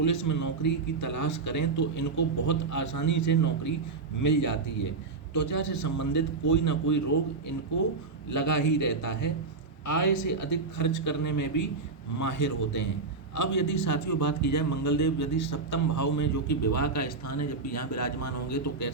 में नौकरी की तलाश करें तो इनको बहुत आसानी से नौकरी मिल जाती है। त्वचा से संबंधित कोई ना कोई रोग इनको लगा ही रहता है। आय से अधिक खर्च करने में भी माहिर होते हैं। अब यदि साथियों बात की जाए मंगलदेव यदि सप्तम भाव में जो कि विवाह का स्थान है, जब भी यहाँ विराजमान होंगे तो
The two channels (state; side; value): quieter; left; 4.1 dB